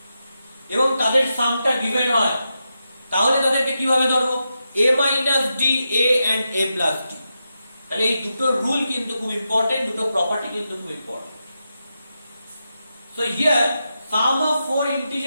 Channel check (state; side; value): inverted; both; correlation -0.87